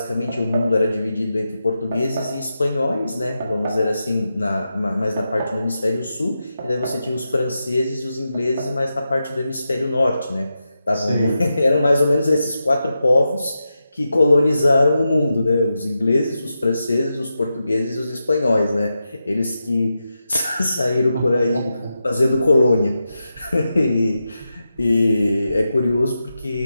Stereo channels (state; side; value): inverted; both; correlation -0.89